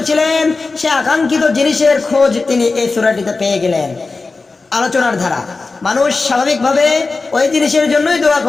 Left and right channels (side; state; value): right; quieter; 3.9 dB